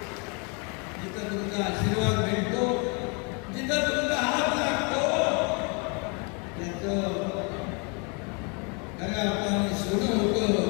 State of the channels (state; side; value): quieter; right; 34.0 dB